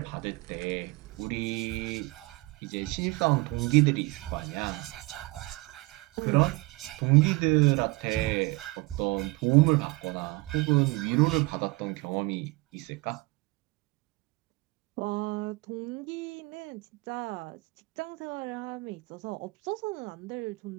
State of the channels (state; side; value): quieter; left; 23.8 dB